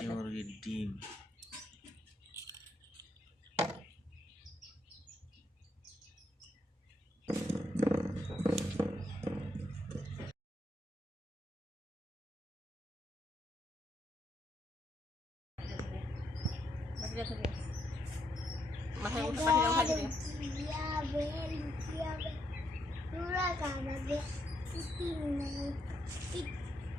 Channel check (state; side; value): normal; both; correlation 0.77